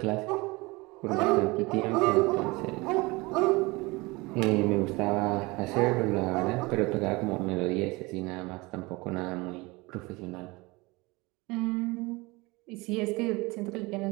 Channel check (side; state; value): left; quieter; 23.8 dB